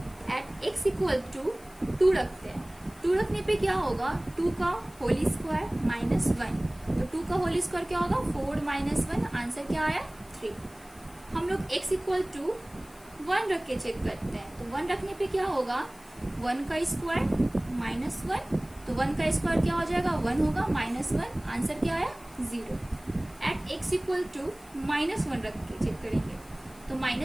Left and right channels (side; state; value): left; noise; hiss, 24 dB below the sound